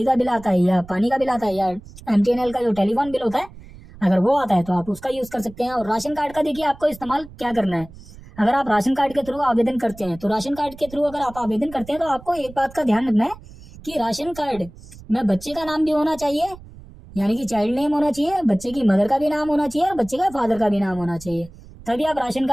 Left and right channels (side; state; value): right; noise; rumble, 19 dB below the sound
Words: का बिल आता है या पानी का बिल आता है या एमटीएनएल का जो टेलीफोन बिल होता है अगर वो आता है तो आप उसका यूज कर सकते हैं। और राशन कार्ड का देखिए आपको इस्तेमाल क्या करना है, अगर आप राशन कार्ड के थ्रू आवेदन करते हैं तो राशन कार्ड के थ्रू अगर आप आवेदन करते हैं तो आपको एक बात का ध्यान रखना है कि राशन कार्ड में बच्चे का नाम भी होना चाहिए, यानी कि चाइल्ड नेम होना चाहिए, बच्चे की मदर का भी नाम होना चाहिए और बच्चे का फादर का भी नाम होना चाहिए, तभी आप राशन